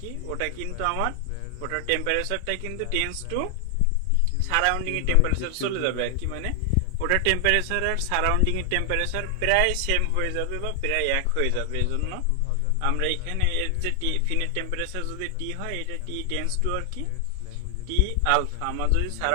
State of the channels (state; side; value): different; both; correlation 0.00